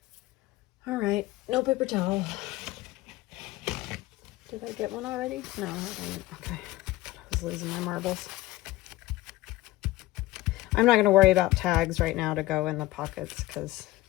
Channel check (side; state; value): right; quieter; 17.5 dB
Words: All right, no paper towel. Did I get one already? No, I didn't. Okay, I was losing my marbles. I'm not going to worry about tags right now to go in the pockets because,